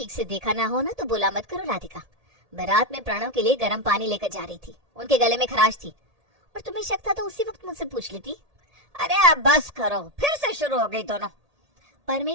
से देखा ना हो ना तो बोला मत करो राधिका। मैं रात में प्रणव के लिए गर्म पानी लेकर जा रही थी, उनके गले में खराश थी, और तुम्हें शक था तो उसी वक्त मुझसे पूछ लेती। अरे अब बस करो, फिर से शुरू हो गई दोनों।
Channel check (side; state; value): left; late; 1.8 ms